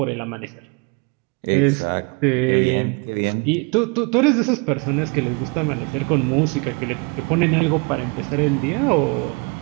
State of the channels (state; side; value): quieter; left; 30.8 dB